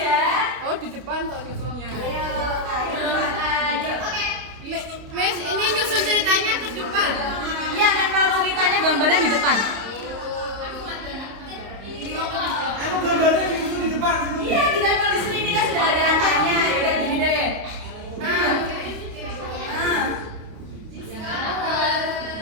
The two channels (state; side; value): late; left; 29 ms